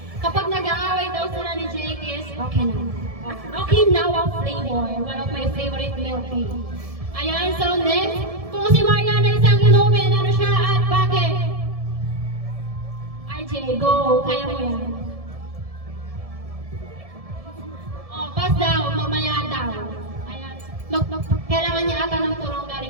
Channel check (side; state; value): left; late; 1.7 ms